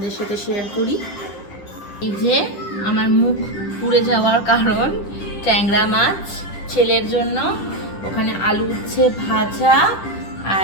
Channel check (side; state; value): right; late; 10 ms